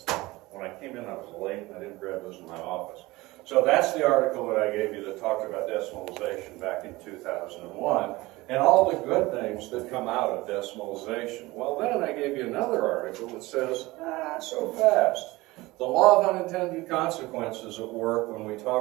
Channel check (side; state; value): left; quieter; 20.5 dB